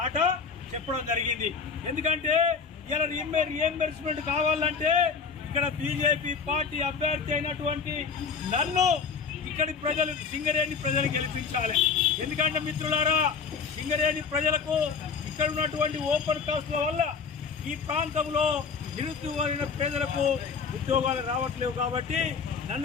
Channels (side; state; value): right; quieter; 5.7 dB